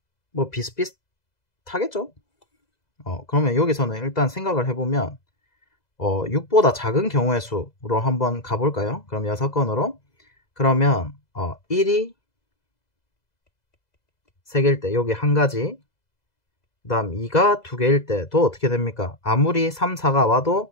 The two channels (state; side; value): late; right; 2.0 ms